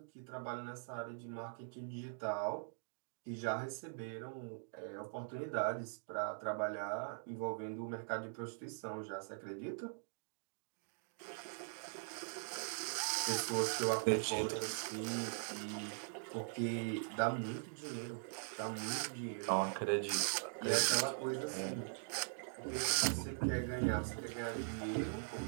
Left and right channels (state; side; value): silent; left; digital silence